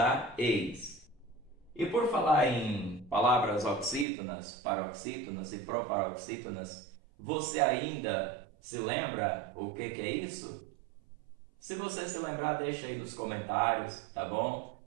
eis. E por falar em palavras oxítonas, paroxítonas e proparoxítonas, você ainda se lembra o que é isso? Se você se lembrar, deixa aí nos comentários, tá bom?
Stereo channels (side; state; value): left; drops out; at 4.0 s